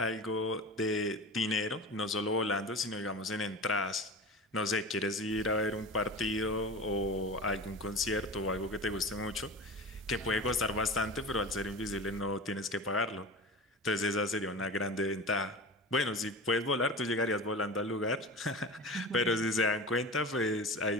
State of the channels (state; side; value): normal; both; correlation 0.32